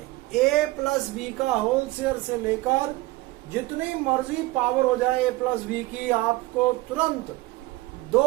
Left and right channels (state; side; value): quieter; left; 19.7 dB